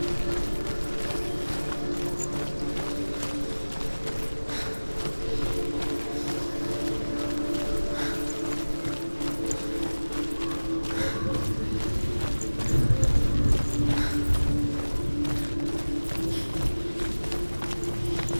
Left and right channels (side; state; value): both; inverted; correlation -1.00